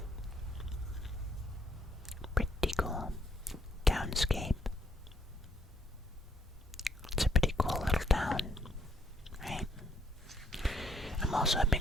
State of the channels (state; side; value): normal; both; correlation 0.70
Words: Pretty cool. Townscape. It's a pretty cool little town, right? I'm also a